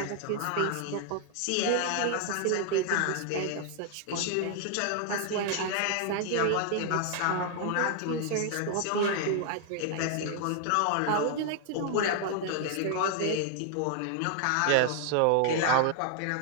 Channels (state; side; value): different; both; correlation 0.00